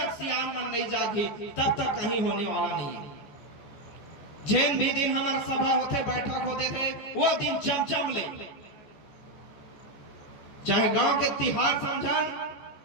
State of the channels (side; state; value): right; late; 14 ms